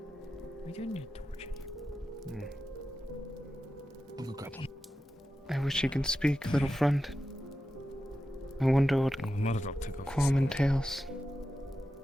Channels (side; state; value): both; normal; correlation 0.91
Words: We do need a torch in here. I'll go grab one. I wish you can speak, little friend. I wonder what Quam entails.